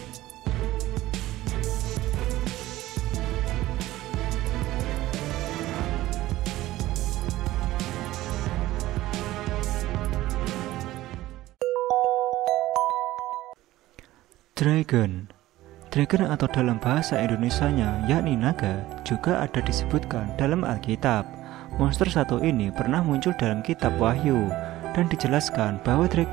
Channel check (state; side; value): quieter; left; 16.1 dB